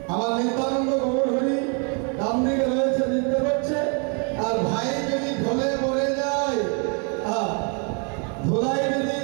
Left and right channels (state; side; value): quieter; left; 37.0 dB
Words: আমার নিত্যানন্দ গৌর হরি ডান দিকে রয়েছে, নৃত্য করছে। আর ভাই যদি ঢলে পড়ে যায়, ধুলাই যদি